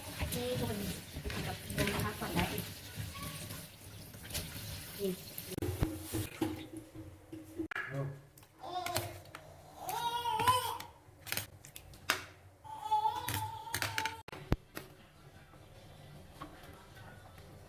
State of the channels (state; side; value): identical; both; correlation 1.00